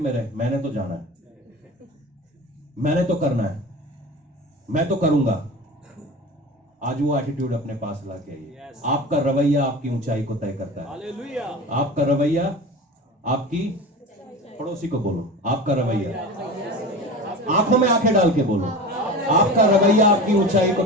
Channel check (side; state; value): both; normal; correlation 0.32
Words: रहे, मैंने तो जाना है, मैंने तो करना है, मैं तो करूंगा। आज वो एटीट्यूड अपने पास लाके आइए। Yes. आपका रवैया आपकी ऊंचाई को तय करता है। हालेलुया। आपका रवैया आपकी, पड़ोसी को बोलो, आपका रवैया, आंखों में आंखें डाल के बोलो, आपका रवैया आपकी ऊंचाई को